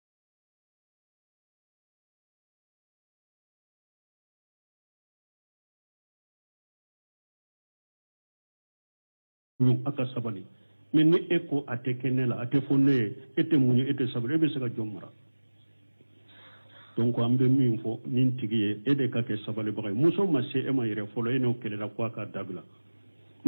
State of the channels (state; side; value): inverted; both; correlation -1.00